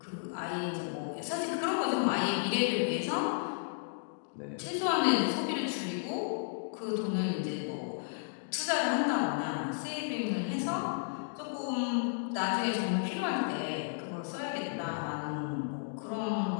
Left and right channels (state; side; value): silent; right; digital silence